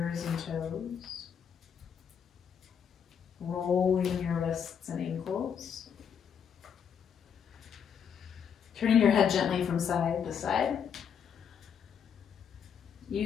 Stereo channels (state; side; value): quieter; right; 7.6 dB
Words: and toes. Rolling your wrists and ankles. Turning your head gently from side to side.